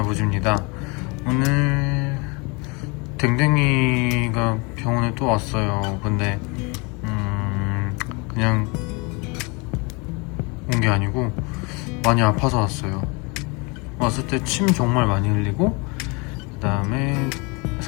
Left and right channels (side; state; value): right; quieter; 29.2 dB